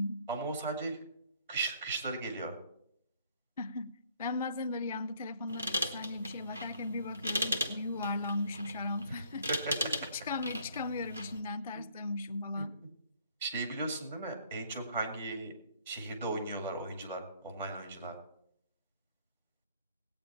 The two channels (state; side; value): inverted; both; correlation -0.62